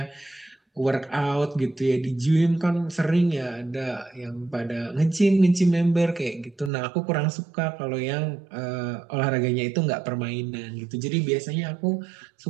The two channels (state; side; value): drops out; left; at 6.7 s